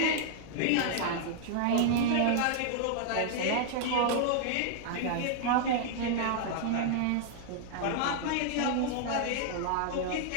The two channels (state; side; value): different; both; correlation 0.00